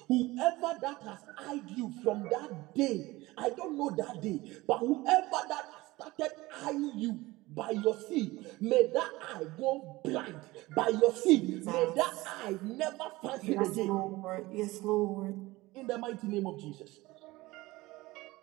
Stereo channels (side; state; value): left; quieter; 20.0 dB